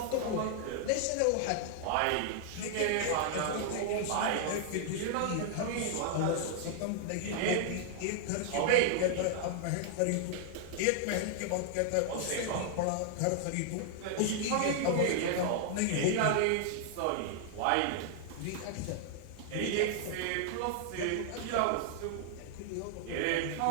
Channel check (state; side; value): different; both; correlation 0.00